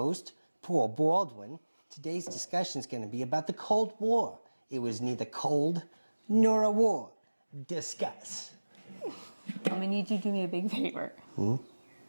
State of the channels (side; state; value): both; inverted; correlation -1.00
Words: Paul Baldwin. Today's discussion is going to be about the Cold War. It was neither cold nor a war. Discuss. I'm going to need you to do me a big favor.